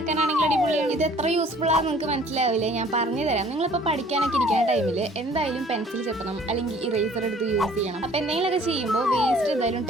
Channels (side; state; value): both; normal; correlation 0.54